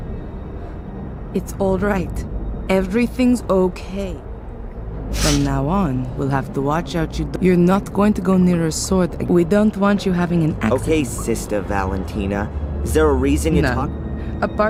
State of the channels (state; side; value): identical; both; correlation 1.00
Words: It's all right. Everything's okay. From now on, we'll have to watch out you're not going to go near a sword. We don't want you having an accident. Okay, Sister Valentina. Is there a reason you talk?